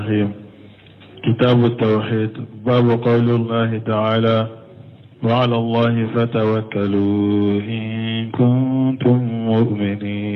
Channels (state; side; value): identical; both; correlation 1.00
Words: كتاب التوحيد باب قول الله تعالى وعلى الله فتوكلوا إن كنتم